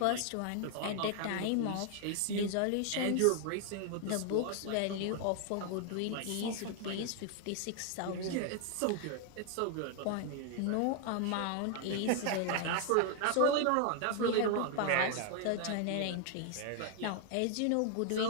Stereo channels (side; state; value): both; different; correlation 0.00